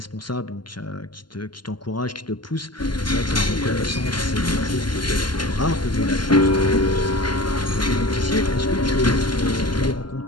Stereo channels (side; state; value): right; late; 0.71 ms